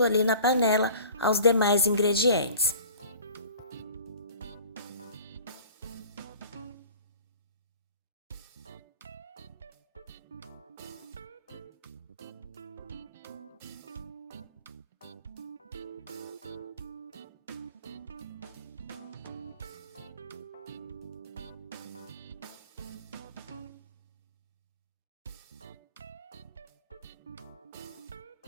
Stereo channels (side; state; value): both; inverted; correlation -0.44